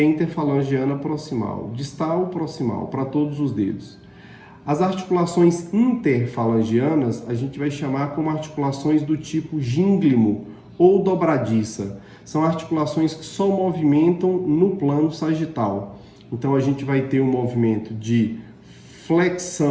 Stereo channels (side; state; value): both; identical; correlation 1.00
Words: interfalangiana proximal. Distal, proximal, para todos os dedos. As articulações interfalangianas a gente vai chamar como articulações do tipo gínglimo ou dobradiça. São articulações que só movimentam no plano sagital. Então a gente vai ter um movimento de